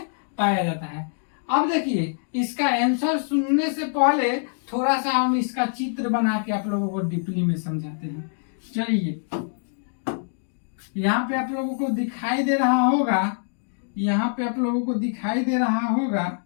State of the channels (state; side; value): silent; right; digital silence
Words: पाया जाता है। अब देखिए, इसका आंसर सुनने से पहले थोड़ा सा हम इसका चित्र बना के आप लोगों को डीपली में समझाते हैं। चलिए, यहाँ पे आप लोगों को दिखाई दे रहा होगा, यहाँ पे आप लोगों को दिखाई दे रहा होगा,